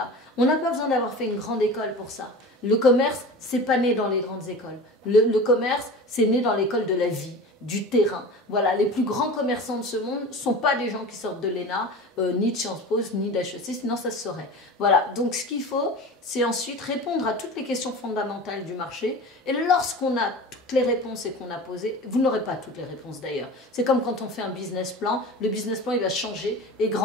On n'a pas besoin d'avoir fait une grande école pour ça. Le commerce, c'est pas né dans les grandes écoles. Le commerce, c'est né dans l'école de la vie, du terrain. Voilà, les plus grands commerçants de ce monde ne sont pas des gens qui sortent de l'ENA, ni de Sciences Po, ni d'HEC, sinon ça se saurait. Voilà, donc ce qu'il faut, c'est ensuite répondre à toutes les questions fondamentales du marché. Et lorsqu'on a toutes les réponses et qu'on a posé, vous n'aurez pas toutes les réponses d'ailleurs. C'est comme quand on fait un business plan, le business plan il va changer et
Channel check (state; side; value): normal; both; correlation 0.35